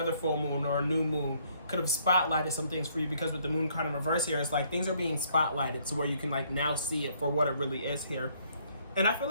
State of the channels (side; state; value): both; inverted; correlation -0.66